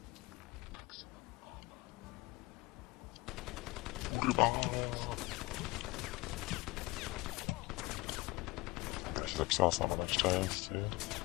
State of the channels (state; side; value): quieter; right; 21.2 dB